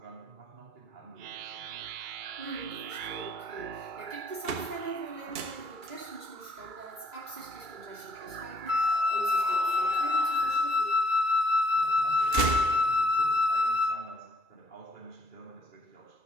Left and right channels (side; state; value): left; late; 2.3 ms